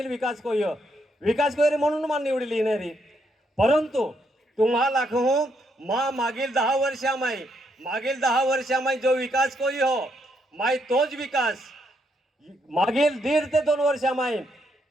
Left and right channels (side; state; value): both; normal; correlation 0.76